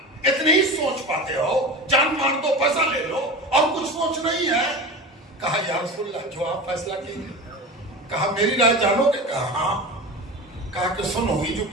इतनी ही सोच पाते हो, जान मार दो, पैसा ले लो, और कुछ सोच नहीं है। कहा या रसूलल्लाह, जो आप फैसला कीजिए। कहा मेरी राय जानोगे? कहा हाँ। कहा कि सुनो, ये जो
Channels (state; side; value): normal; both; correlation 0.30